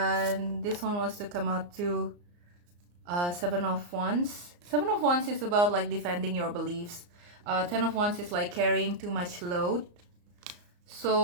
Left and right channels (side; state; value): left; late; 34 ms